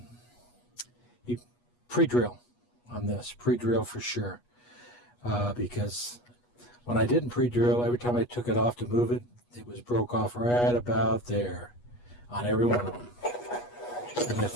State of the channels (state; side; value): late; right; 8.3 ms